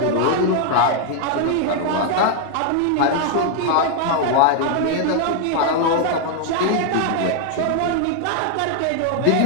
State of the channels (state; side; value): different; both; correlation 0.00